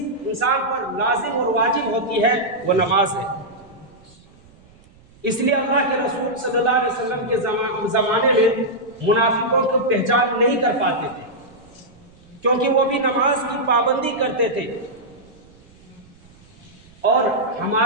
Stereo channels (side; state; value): right; noise; rumble, 27 dB below the sound